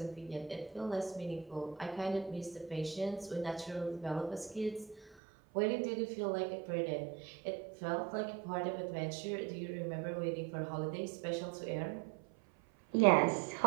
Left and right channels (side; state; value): left; drops out; at 5.2 s